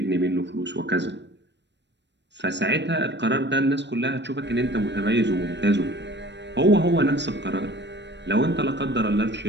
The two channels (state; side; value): late; left; 0.51 ms